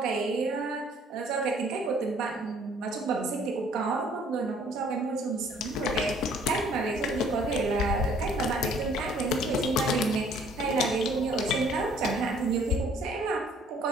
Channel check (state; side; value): normal; both; correlation 0.58